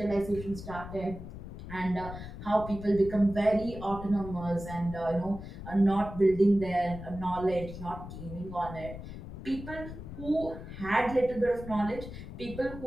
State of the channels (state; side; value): noise; left; rumble, 11 dB below the sound